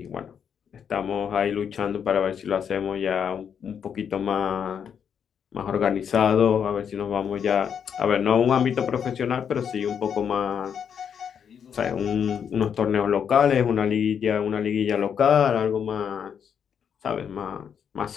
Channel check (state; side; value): quieter; right; 7.7 dB